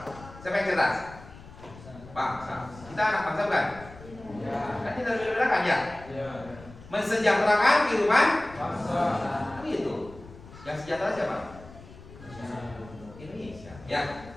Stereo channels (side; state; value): left; noise; rumble, 18 dB below the sound